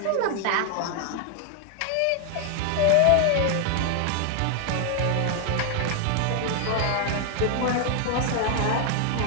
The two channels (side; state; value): both; different; correlation 0.00